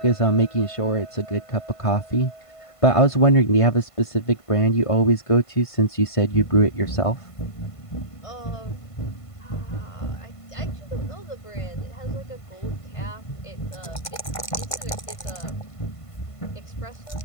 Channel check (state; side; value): late; right; 1.5 ms